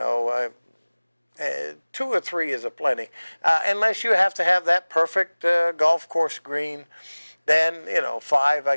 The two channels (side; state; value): both; inverted; correlation -1.00